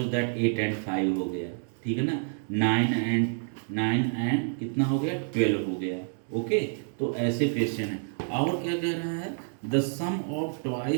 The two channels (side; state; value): left; silent; 59 dB below the other